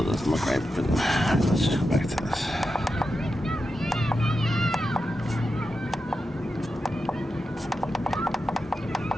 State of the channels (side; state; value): both; normal; correlation 0.89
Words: doesn't look right, but let's just go back to this.